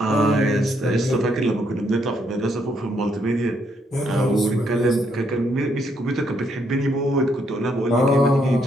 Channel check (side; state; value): both; normal; correlation 0.73